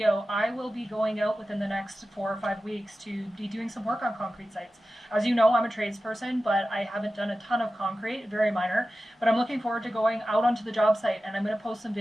I will be going out within the next 4 or 5 weeks to be doing some work on concrete sites. As you know, I'm a tradesperson, but I haven't done a ton of concrete, very minor. But I'm looking forward to going out onto the job site, and I'm going to post some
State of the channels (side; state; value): both; normal; correlation 0.94